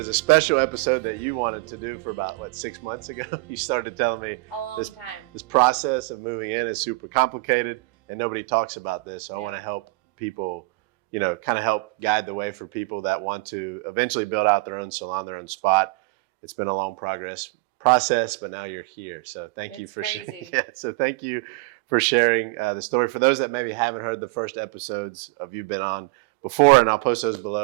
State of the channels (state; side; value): quieter; left; 26.0 dB